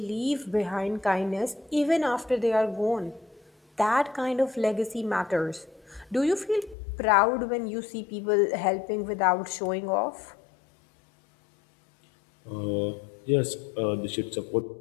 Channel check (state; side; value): drops out; right; at 6.8 s